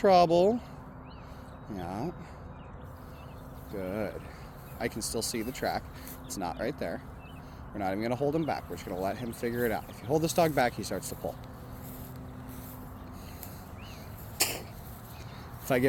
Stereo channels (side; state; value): both; identical; correlation 1.00